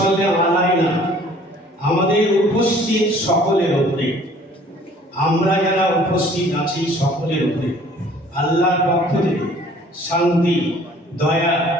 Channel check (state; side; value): normal; both; correlation 0.54